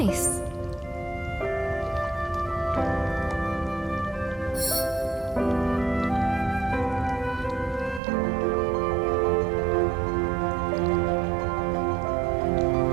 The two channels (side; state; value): left; drops out; at 8.0 s